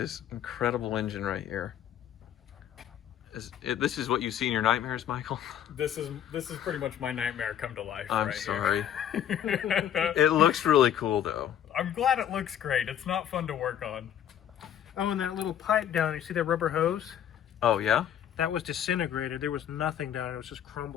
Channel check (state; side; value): quieter; right; 10.1 dB